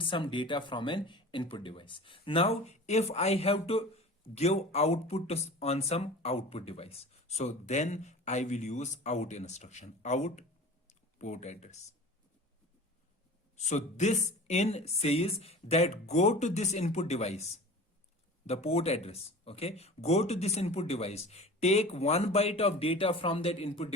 some data from an input device. Now if I have to give output on some output device, so then I will use out instruction, out port address. So this in says that go to this input device, the port address. Okay, go to this input device, take 1 byte of data from that input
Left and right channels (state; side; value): normal; both; correlation 0.39